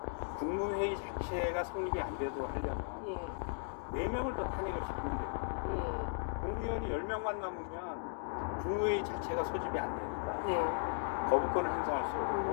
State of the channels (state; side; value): silent; right; digital silence